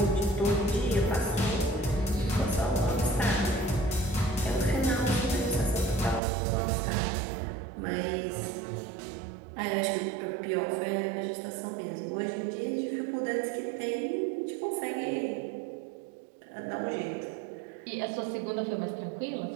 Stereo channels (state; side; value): drops out; left; at 6.2 s